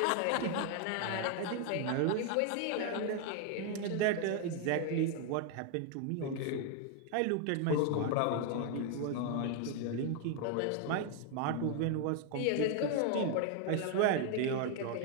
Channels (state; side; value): different; both; correlation 0.00